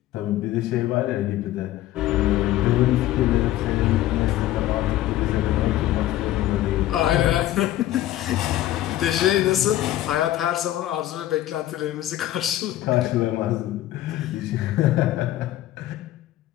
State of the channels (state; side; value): quieter; right; 14.2 dB